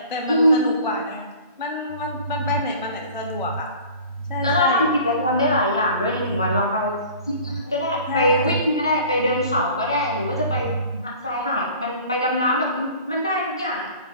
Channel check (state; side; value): inverted; both; correlation -0.45